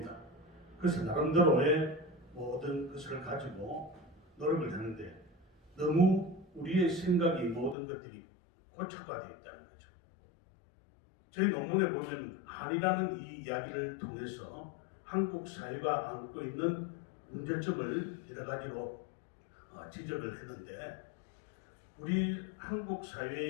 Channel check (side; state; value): right; drops out; at 7.8 s